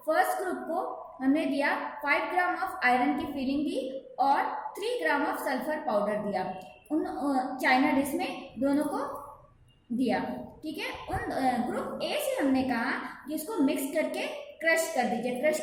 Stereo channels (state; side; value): identical; both; correlation 1.00